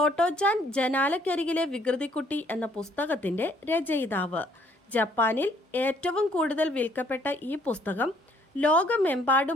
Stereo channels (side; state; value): both; normal; correlation 0.63